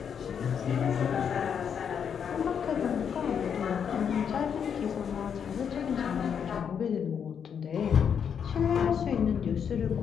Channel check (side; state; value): right; quieter; 7.5 dB